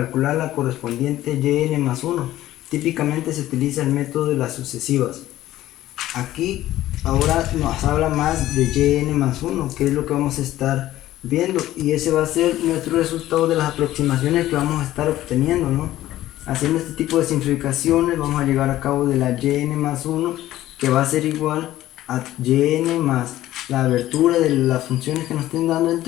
la correspondiente yn más 1. Típicamente se utiliza el método de las sucesivas. Aquí ahora nos habla más de yn más 1, que es lo que vamos a estar viendo, y ese va a ser nuestro resultado de las aproximaciones que vamos a estar obteniendo, ¿no? Haciendo este tipo de simplificaciones vamos a llegar a cabo de la yn más 1, que va a ser igual a yn más la abertura de las funciones que nos estén dando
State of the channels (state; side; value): quieter; right; 14.5 dB